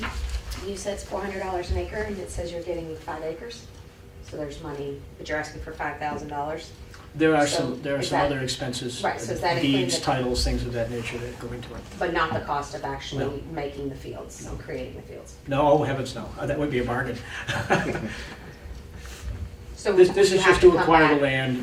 said it's $400 an acre, and it says you're getting 5 acres, so there's money, but you're asking for $5,000. There are So, some is that- other expenses. Right, so is that including deeds, the- titles, things of that nature that go into it. But not the cost of actually No. making the fields, No. and creating the fields. No, oh heavens no, that would be a bargain. So This would is you have just to come acquire the back- land,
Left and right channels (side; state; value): both; identical; correlation 1.00